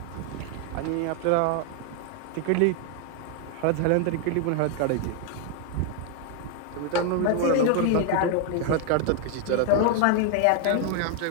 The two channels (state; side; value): different; both; correlation 0.00